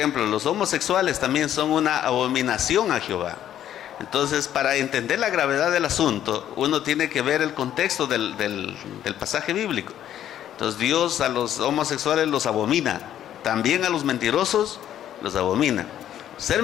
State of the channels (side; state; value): right; quieter; 11.0 dB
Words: los homosexuales también son una abominación a Jehová. Entonces, para entender la gravedad del asunto, uno tiene que ver el contexto del pasaje bíblico. Entonces, Dios a los homosexuales los abomina, también a los mentirosos los abomina. Ser